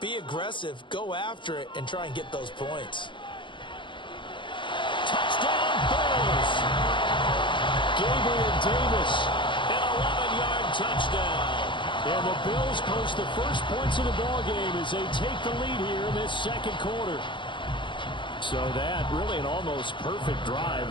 aggressive, go after it, and try and get those points. Touchdown, Bills! Gabriel Davis. An 11-yard touchdown. And the Bills post the first points of the ballgame as they take the lead here in this 2nd quarter. So that really an almost perfect drive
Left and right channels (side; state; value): right; late; 0.23 ms